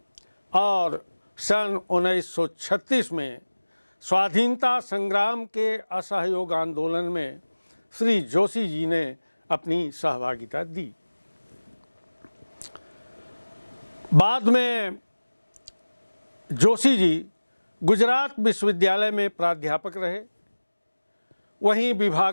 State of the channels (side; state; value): both; inverted; correlation -1.00